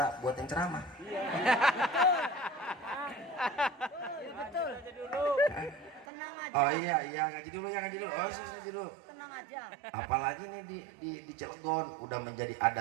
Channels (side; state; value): left; drops out; at 6.1 s